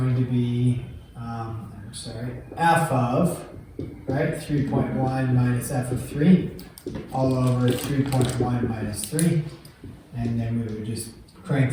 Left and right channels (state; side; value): identical; both; correlation 1.00